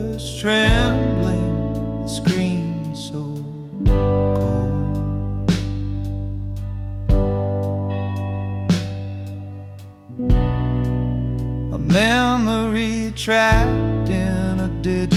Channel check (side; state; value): both; identical; correlation 1.00